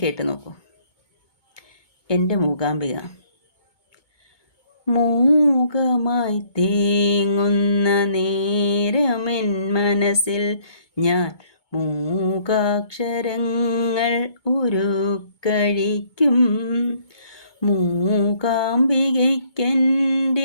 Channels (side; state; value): right; late; 2.2 ms